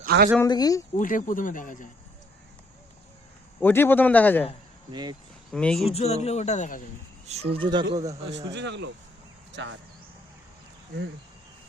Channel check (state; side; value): normal; both; correlation 0.68